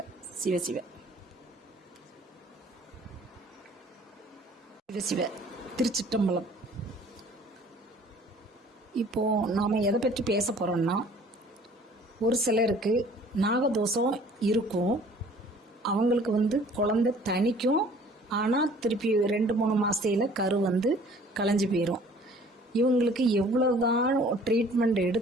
சிவசிவ சிவசிவ. திருச்சிற்றம்பலம். இப்போ நாம எதை பற்றி பேச போறோம்னா, ஒரு சிலருக்கு நாகதோஷம் இருக்கும், அவங்களுக்கு குழந்தை தனிக்கும், ஆனால் திருப்பி 2-3 மாசத்துல கரு கலைஞ்சு போயிடும். இவங்களுக்கு எவ்வளவுதான் ட்ரீட்மெண்ட்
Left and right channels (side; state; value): both; normal; correlation 0.53